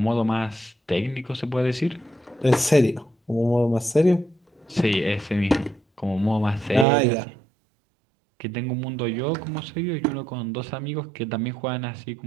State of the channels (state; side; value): drops out; left; at 6.9 s